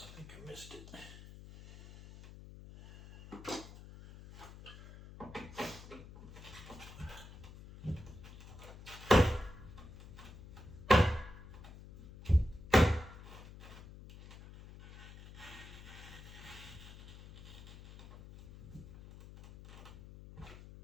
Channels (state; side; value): noise; left; hum, 16 dB below the sound